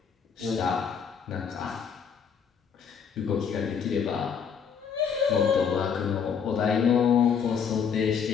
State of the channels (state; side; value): quieter; right; 6.9 dB